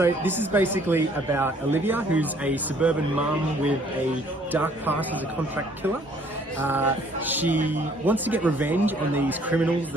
this is basically about Olivia, who's a suburban mum with a dark past as a contract killer. She wants to get revenge on these criminals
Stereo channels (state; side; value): normal; both; correlation 0.60